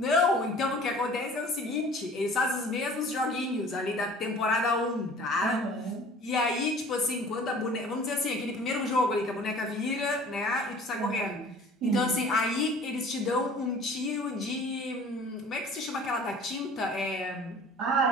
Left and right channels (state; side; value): normal; both; correlation 0.47